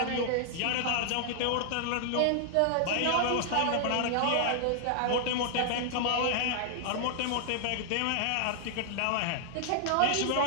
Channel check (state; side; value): different; both; correlation -0.01